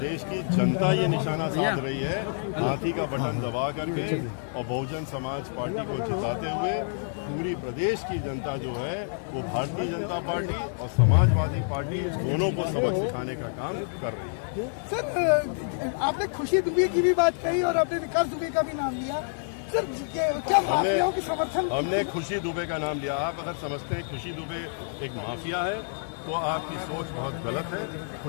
की जनता ये निशाना साध रही है, हाथी का बटन दबा करके। और बहुजन समाज पार्टी को जिताते हुए पूरी प्रदेश की जनता जो है वो भारतीय जनता पार्टी और समाजवादी पार्टी दोनों को सबक सिखाने का काम कर रही है। सर, आपने खुशी दुबे की भी बात कही और आपने विकास दुबे का भी नाम लिया। सर, क्या माफियाओं के समर्थन? हमने खुशी दुबे का नाम लिया। आप अगर समझते हैं खुशी दुबे एक माफिया है तो आपकी सोच बहुत गलत है।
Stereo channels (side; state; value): right; silent; digital silence